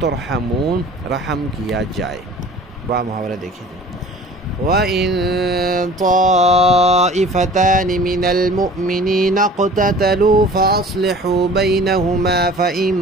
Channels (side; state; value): both; normal; correlation 0.45